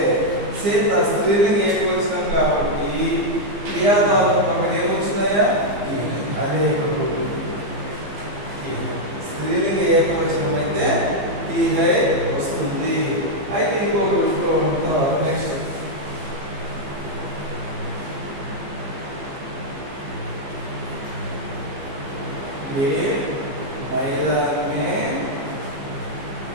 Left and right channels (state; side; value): late; left; 15 ms